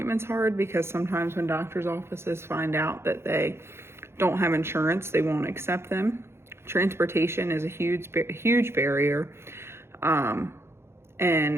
hard because sometimes when doctors' offices find out that they don't have insurance, they won't accept them. Transportation is a huge barrier,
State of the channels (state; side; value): late; left; 0.12 ms